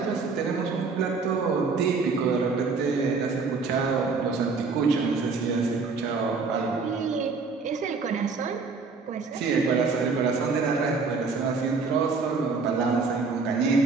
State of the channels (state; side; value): quieter; left; 4.5 dB